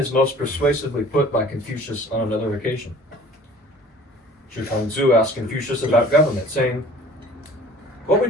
most persuasively put by Confucius on another occasion. Zhi Kangzu asked Confucius about government, saying, "What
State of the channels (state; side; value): normal; both; correlation 0.48